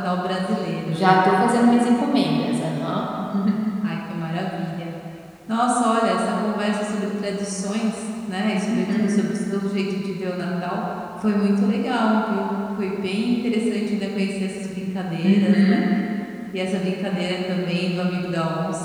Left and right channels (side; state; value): both; identical; correlation 1.00